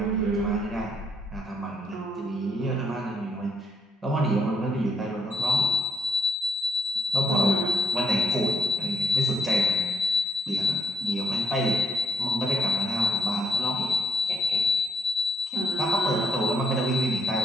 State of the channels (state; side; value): normal; both; correlation 0.74